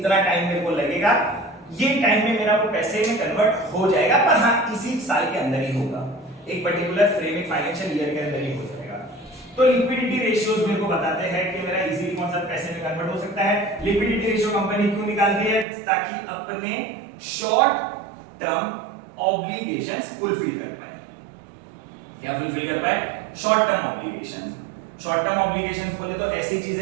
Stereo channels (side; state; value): left; drops out; at 15.7 s